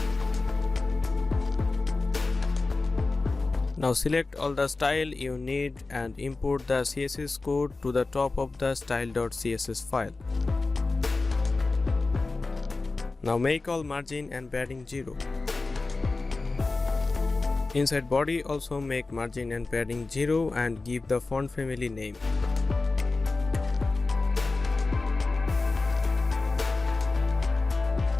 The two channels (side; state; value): right; quieter; 3.6 dB